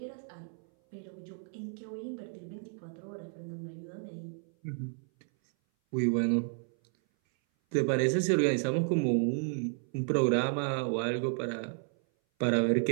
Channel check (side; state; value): left; silent; 56 dB below the other